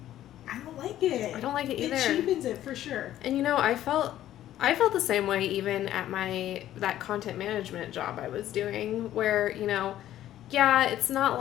I don't like it. I don't like it either. It cheapens it for sure. And you know, I felt the same way even at that content management job I was doing, where, you know, it's not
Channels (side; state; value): right; quieter; 12.7 dB